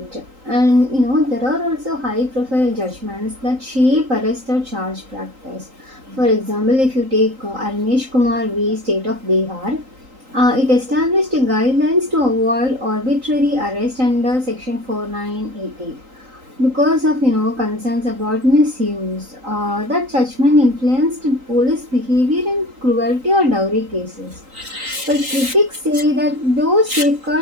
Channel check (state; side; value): late; left; 3.8 ms